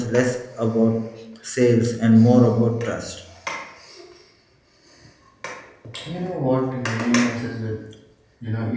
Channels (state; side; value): identical; both; correlation 1.00